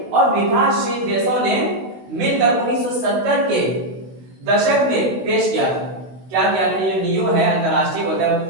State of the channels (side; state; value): left; late; 16 ms